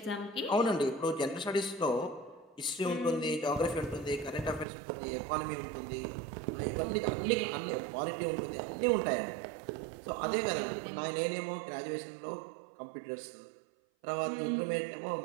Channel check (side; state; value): left; drops out; at 4.7 s